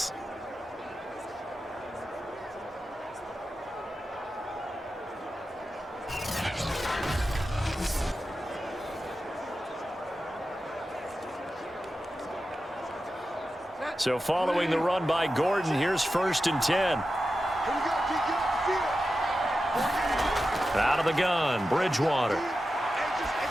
So following the run by Gordon, here's 1st and 10. Out of the gun, Bridgewater.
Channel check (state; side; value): normal; both; correlation 0.91